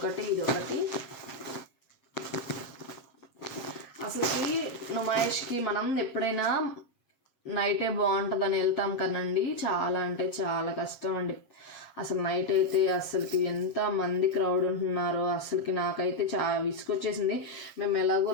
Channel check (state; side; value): late; right; 7.4 ms